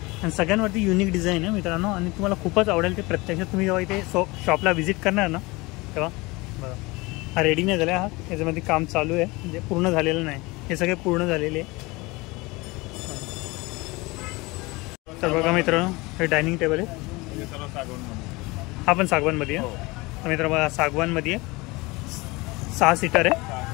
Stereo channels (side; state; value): right; quieter; 23.5 dB